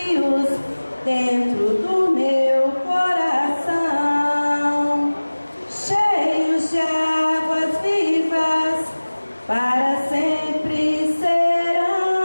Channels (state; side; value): inverted; both; correlation -1.00